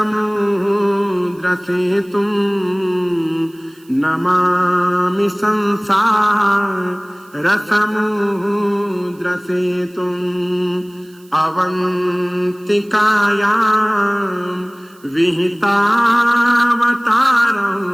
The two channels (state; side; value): noise; right; hiss, 29 dB below the sound